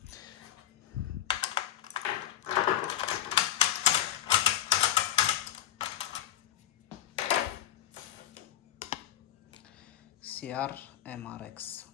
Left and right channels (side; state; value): right; quieter; 12.1 dB